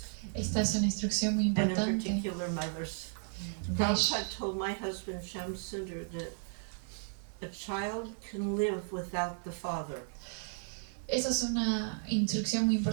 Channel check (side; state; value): left; silent; 55 dB below the other